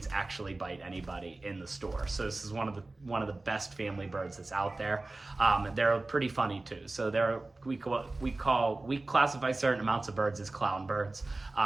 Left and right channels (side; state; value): left; quieter; 3.1 dB